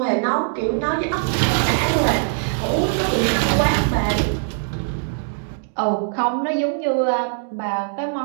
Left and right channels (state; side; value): silent; left; digital silence